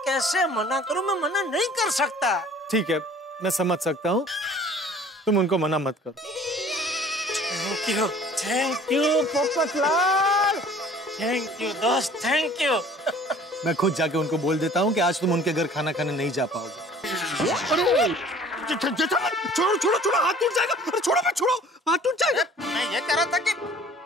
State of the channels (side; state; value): both; normal; correlation 0.50